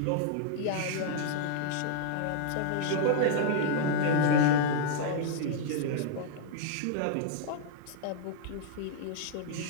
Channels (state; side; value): different; both; correlation -0.01